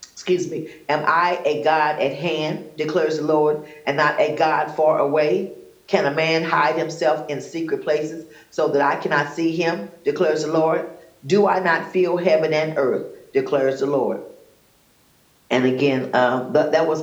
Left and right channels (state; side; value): identical; both; correlation 1.00